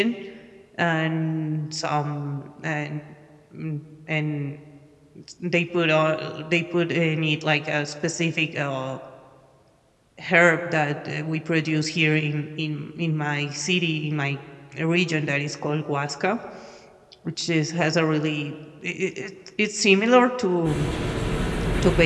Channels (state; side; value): identical; both; correlation 1.00